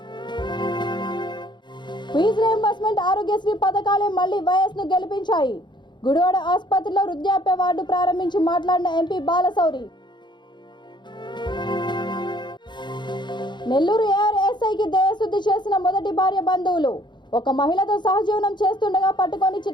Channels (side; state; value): right; late; 0.22 ms